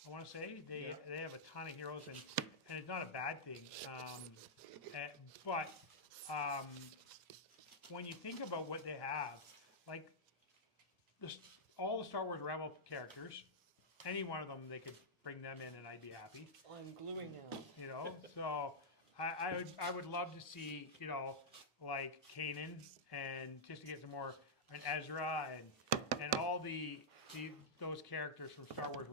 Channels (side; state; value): both; normal; correlation -0.09